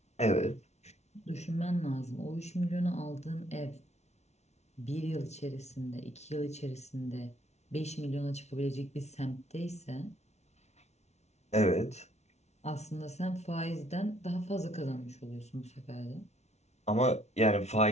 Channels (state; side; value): late; right; 0.32 ms